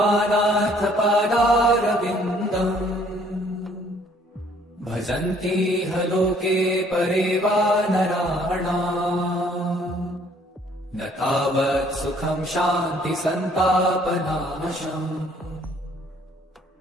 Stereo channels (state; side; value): normal; both; correlation 0.61